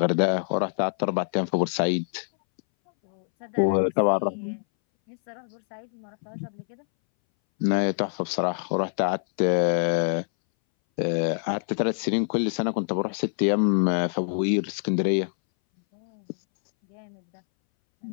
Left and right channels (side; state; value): right; silent; 61 dB below the other